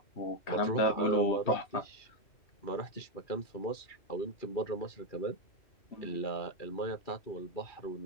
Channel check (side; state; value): right; late; 2.4 ms